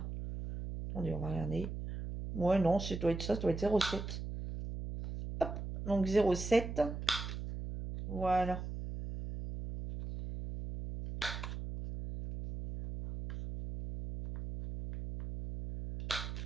Attendez, on va regarder. Ouais, non, ça doit être 0,7. Hop, donc 0,7. Voilà.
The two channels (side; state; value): right; noise; hum, 6 dB below the sound